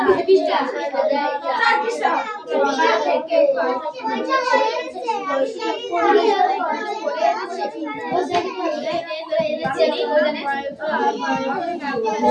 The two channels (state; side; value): identical; both; correlation 1.00